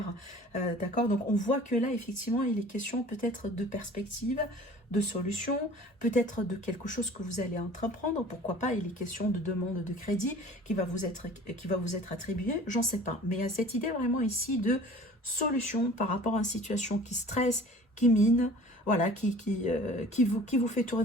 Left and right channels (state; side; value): normal; both; correlation 0.46